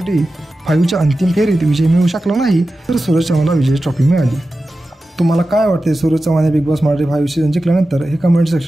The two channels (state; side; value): normal; both; correlation 0.93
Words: 5च्या अंतिम फेरीत विजय मिळवू शकला नाही तर सूरज चव्हाणला विजय ट्रॉफी मिळाली. तुम्हाला काय वाटते? सूरज चव्हाणने बिग बॉस मराठी 5 सीझन जिंकल्यानंतर हे कमेंट